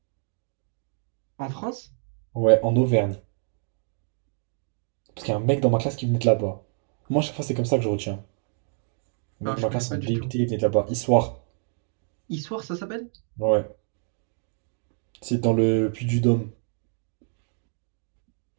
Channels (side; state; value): left; silent; 57 dB below the other